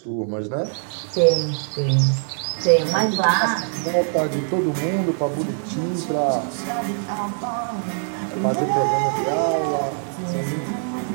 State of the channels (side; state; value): left; silent; 63 dB below the other